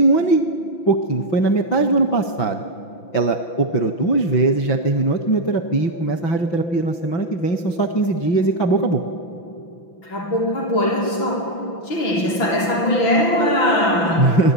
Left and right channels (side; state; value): right; late; 5.9 ms